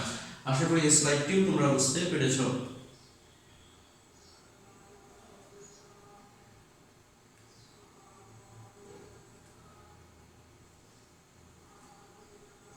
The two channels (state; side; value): identical; both; correlation 1.00